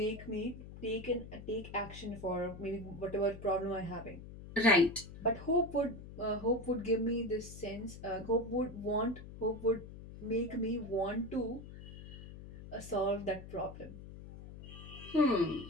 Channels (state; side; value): noise; left; hum, 13 dB below the sound